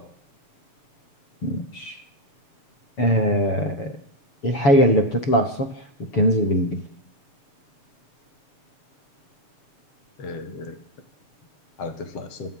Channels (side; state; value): right; late; 7.0 ms